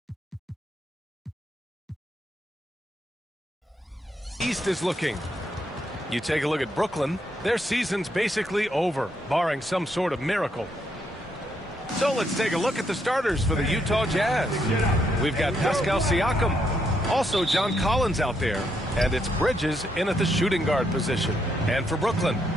East is looking. You take a look at Brooklyn, their season's basically over, barring some sort of miracle. So let's take a look at the starters for the Utah Jazz. We've got Pascal Siakam, also John Collins out there, and it's Bridges in at the shooting guard position. And for Brooklyn,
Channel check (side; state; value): both; normal; correlation 0.77